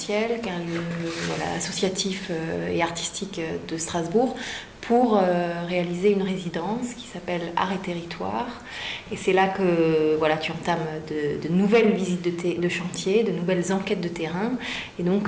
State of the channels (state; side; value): identical; both; correlation 1.00